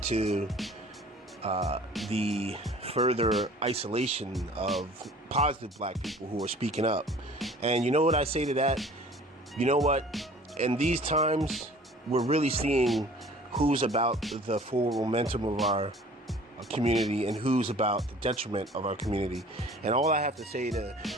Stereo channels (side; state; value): both; normal; correlation 0.48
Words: to the further isolation of positive black people who are speaking up. And you know what I say to that? You know what? In these times, we're really seeing who's about the forward momentum of our community and who's about the detriment of our community. And all I have to say to